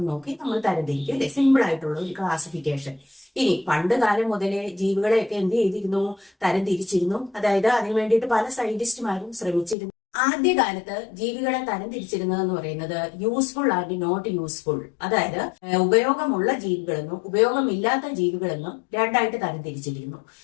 നോക്കി നമ്മൾ തരംതിരിക്കും അല്ലെ. സിമ്പിൾ ആയിട്ടുള്ള ഒരു ക്ലാസിഫിക്കേഷൻ. ഇനി പണ്ട് കാലം മുതലേ ജീവികളെയൊക്കെ എന്ത് ചെയ്തിരുന്നു? തരംതിരിച്ചിരുന്നു. അതായത് അതിനു വേണ്ടിയിട്ട് പല സയന്റിസ്റ്റുമാരും ശ്രമിച്ചിരുന്നു. ആദ്യകാലത്ത് ജീവികളെ തരംതിരിച്ചിരുന്നതെന്ന് പറയുന്നത് യൂസ്ഫുൾ ആൻഡ് നോട്ട് യൂസ്ഫുൾ, അതായത് ഉപയോഗമുള്ള ജീവികളെന്നും ഉപയോഗമില്ലാത്ത ജീവികളെന്നും രണ്ടായിട്ട് തരംതിരിച്ചിരുന്നു.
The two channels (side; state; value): right; drops out; at 9.8 s